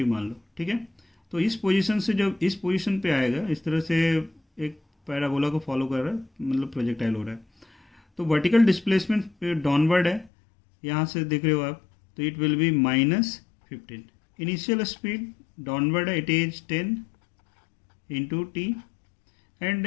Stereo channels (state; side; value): drops out; right; at 10.3 s